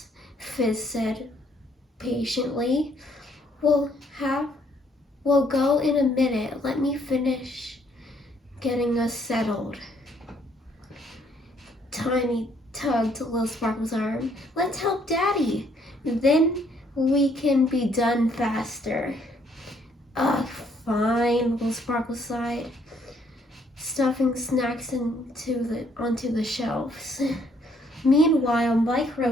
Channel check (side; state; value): both; normal; correlation 0.67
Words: Fizz said patiently, We'll go in a minute. Let me finish getting us settled." Tiny tugged Little Sparkle's arm. "Let's help Daddy. Then we can be done faster." "Ugh, fine," Little Sparkle sighed, stuffing snacks onto the shelves. Meanwhile,